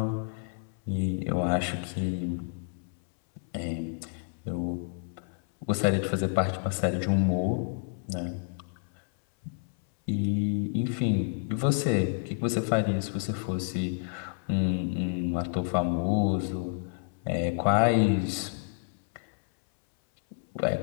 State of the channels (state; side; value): silent; right; 58 dB below the other